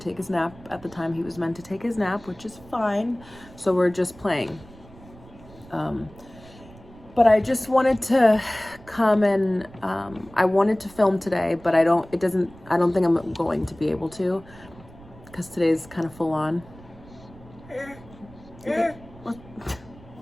take his nap at the time he was meant to take his nap, which is fine. So we're just playing. But I just wanted to come and I wanted to film today, but I don't think I'm going to be able to because today's kind of full on. Okay. I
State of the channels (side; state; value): right; noise; rumble, 21 dB below the sound